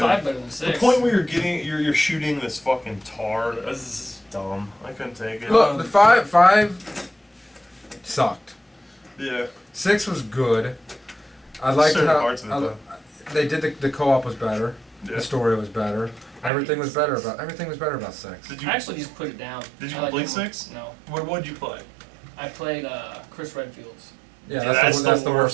good. 5 better than 6. The point where you're shooting this fucking tar. This is dumb. I couldn't take it. Look, the 5 sucked. Yeah. 6 was good. I liked Certain how parts of it, though. they did the co-op was better. Yeah. The story was better. Everything was better about 6. Did you I actually just put it down. Did you I like complete that one. 6? No. What'd you play? I played Chris Redfield's. Yeah, that's the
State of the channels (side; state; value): left; drops out; at 16.5 s